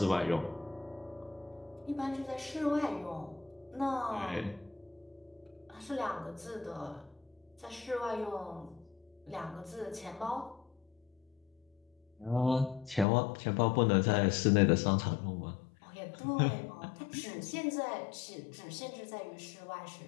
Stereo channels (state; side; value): drops out; right; at 13.1 s